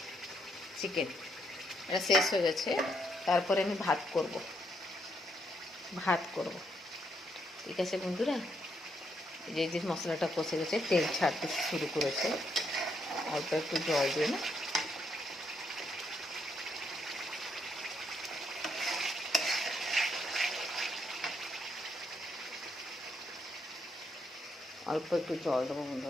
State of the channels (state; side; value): normal; both; correlation 0.76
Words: চিকেন, এটা শেষ হয়ে গেছে। তারপরে আমি ভাত করব। ঠিক আছে বন্ধুরা, এই যে মশলাটা কষে গেছে, তেল ছাড়তে শুরু করেছে। অল্প একটু জল দিয়ে না, অল্প একটু জল দেবো